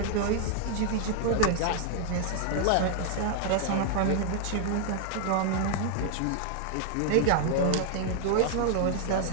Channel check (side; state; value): both; different; correlation 0.00